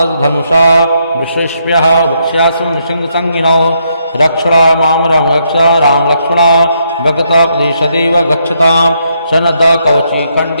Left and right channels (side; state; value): both; inverted; correlation -0.76